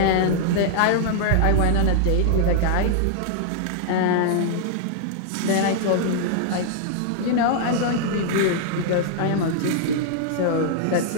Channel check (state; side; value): different; both; correlation -0.01